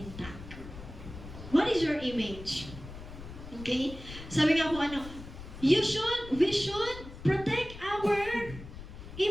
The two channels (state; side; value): noise; left; rumble, 13 dB below the sound